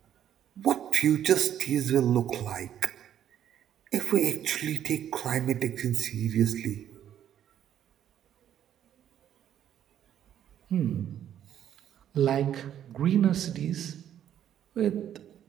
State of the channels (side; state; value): left; quieter; 10.3 dB